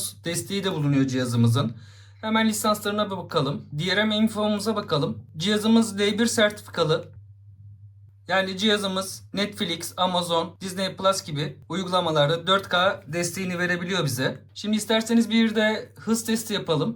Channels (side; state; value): both; identical; correlation 1.00